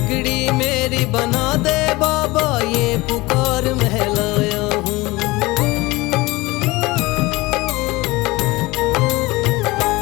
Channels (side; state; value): right; quieter; 21.5 dB